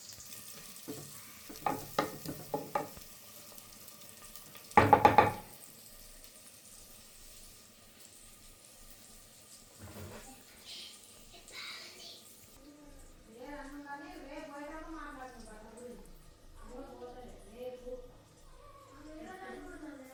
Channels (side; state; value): both; identical; correlation 1.00